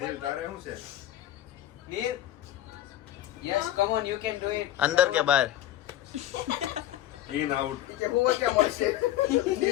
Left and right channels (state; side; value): quieter; right; 13.2 dB